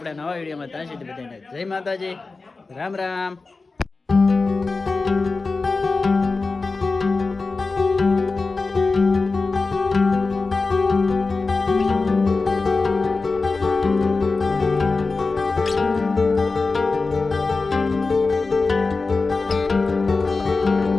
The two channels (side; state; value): right; quieter; 3.9 dB